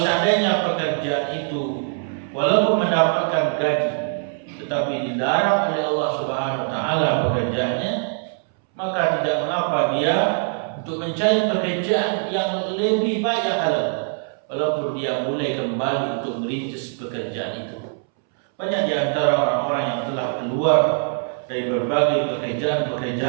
seandainya pekerjaan itu walaupun mendapatkan gaji tetapi dilarang oleh Allah Subhanahu wa taala pekerjaannya, maka tidak mengapa dia untuk mencari pekerjaan yang lebih baik yang halal, walaupun dia mulai kembali untuk merintis pekerjaan itu. Banyak di antara orang-orang yang telah keluar dari berbagai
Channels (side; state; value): left; silent; 64 dB below the other